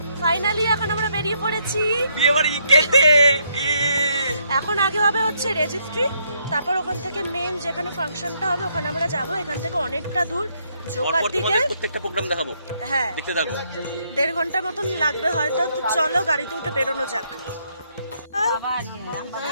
ফাইনালি এখন আমরা বেরিয়ে পড়েছি বিয়ে বাড়ি খেতে। এখন আগে হবে হচ্ছে রেজিস্ট্রি, তারপর ওখান থেকে মেন যেখানে ফাংশনটা হবে ওখানে আমরা যাব। এখান থেকে অনেকটা দূর, জোকার দিকে। প্রত্যেকটা প্রোগ্রাম দেখাবো, হ্যাঁ দেখতে থাকো। 1.5 ঘন্টা মতন লাগবে হয়তো। তো চলো গাড়িতে উঠে বেরোনো যাক।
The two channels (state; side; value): inverted; both; correlation -0.73